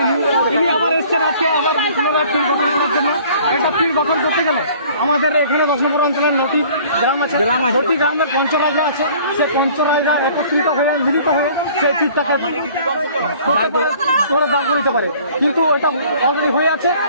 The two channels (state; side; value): inverted; both; correlation -0.52